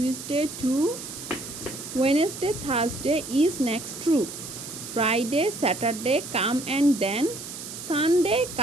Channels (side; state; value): right; noise; hiss, 10 dB below the sound